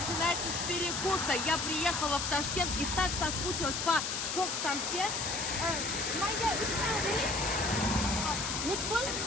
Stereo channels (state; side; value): noise; left; hiss, 2 dB below the sound